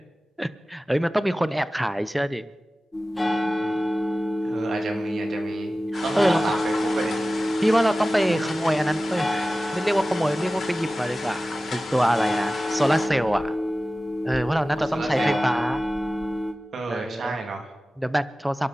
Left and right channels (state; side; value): normal; both; correlation 0.96